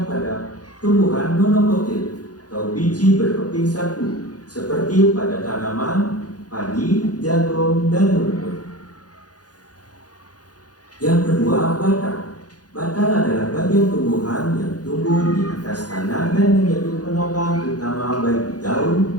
pada tumbuhan monokotil atau biji berkeping satu, seperti pada tanaman padi, jagung, dan rumput. Yang kedua, batang. Batang adalah bagian tumbuhan yang tumbuh di atas tanah dan menjadi penopang utama bagi daun,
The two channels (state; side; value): late; right; 0.68 ms